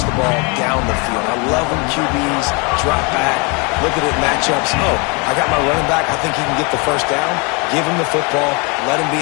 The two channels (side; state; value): right; quieter; 31.1 dB